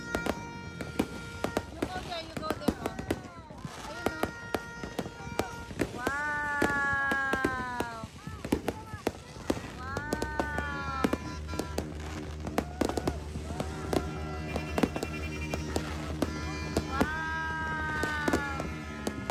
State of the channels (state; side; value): identical; both; correlation 1.00